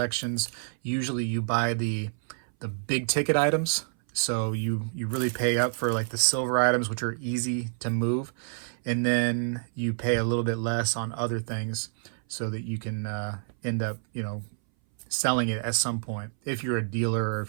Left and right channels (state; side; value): silent; left; 59 dB below the other